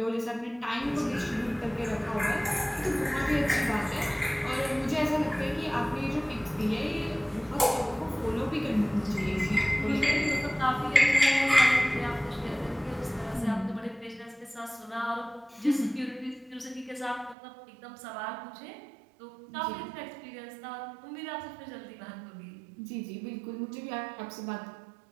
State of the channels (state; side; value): drops out; left; at 17.4 s